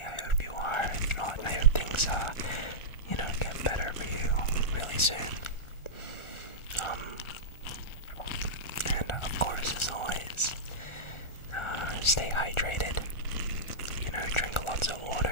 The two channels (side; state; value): right; late; 1.4 ms